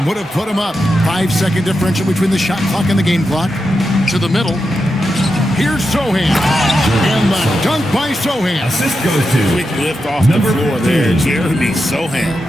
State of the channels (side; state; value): both; normal; correlation 0.88